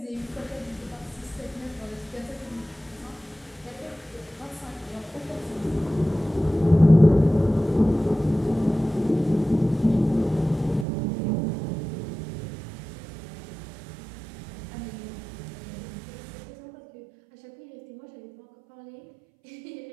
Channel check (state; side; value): drops out; left; at 10.9 s